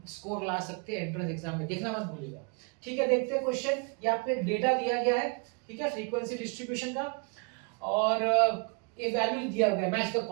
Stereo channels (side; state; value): left; quieter; 34.5 dB